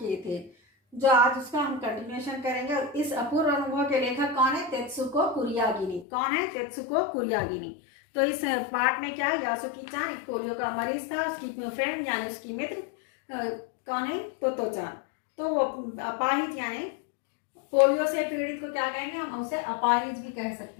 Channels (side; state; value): right; drops out; at 6.1 s